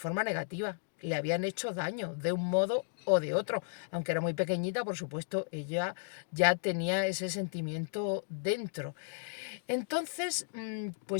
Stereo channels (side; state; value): right; silent; digital silence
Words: negativa, le habían hecho daño de un modo o de otro. Aunque era muy pequeñita, por supuesto, ella ya tenía ese sentimiento dentro. Entonces,